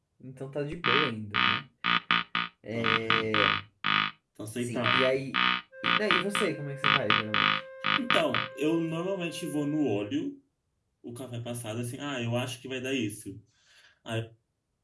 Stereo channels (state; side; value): identical; both; correlation 1.00